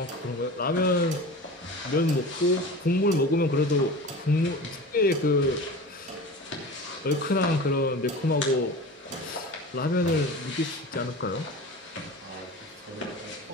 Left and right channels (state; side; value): normal; both; correlation 0.34